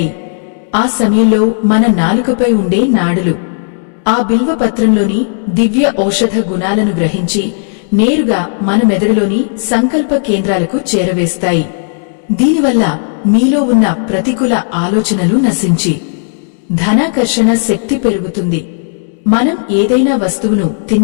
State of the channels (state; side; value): silent; right; digital silence